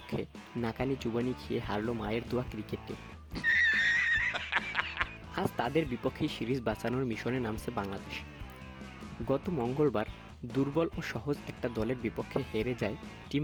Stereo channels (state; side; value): identical; both; correlation 1.00